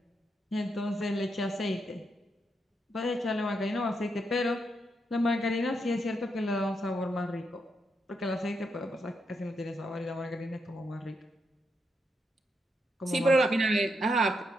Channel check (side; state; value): both; normal; correlation 0.81